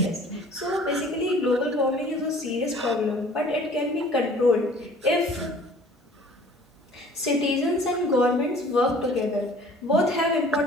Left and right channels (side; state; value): both; normal; correlation 0.50